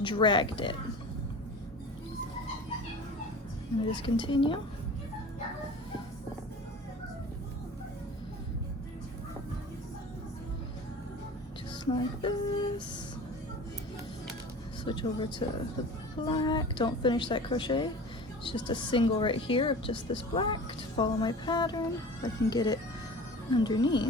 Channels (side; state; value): both; normal; correlation 0.38